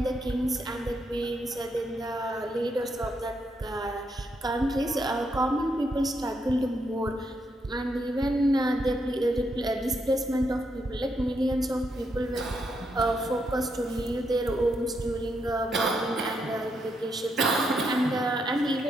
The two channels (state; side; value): normal; both; correlation 0.79